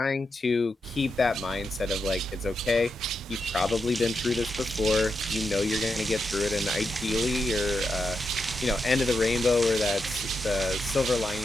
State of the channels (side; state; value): both; normal; correlation 0.85